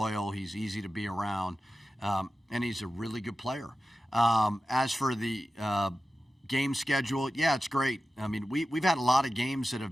He's easy to be around. And he's a really good player. As for the game schedule, yeah, it's great. I mean, we've had a lot of games that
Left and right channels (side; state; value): both; normal; correlation 0.94